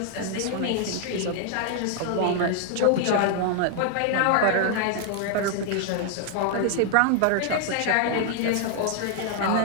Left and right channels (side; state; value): both; different; correlation 0.00